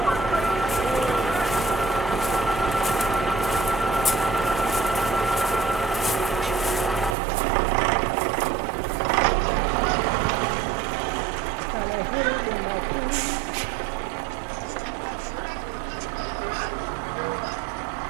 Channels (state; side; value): drops out; left; at 7.2 s